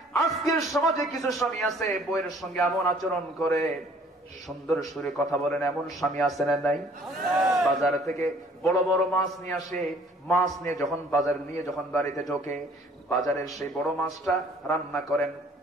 আজকের সমাজে কিছু স্বামী আছে বউয়ের সঙ্গে এমন আচরণ করে, সুন্দর সুরে কথা বলেন, এমন স্বামী আছে না নাই? বাজার থেকে বড় বড় মাছ নিয়ে আসে, মাছ নিয়ে যখন বাজার নিয়ে যখন বাড়িতে ঢোকে, বাজারের সেই বড় মাছটা রান্না করেন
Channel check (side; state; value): both; normal; correlation 0.56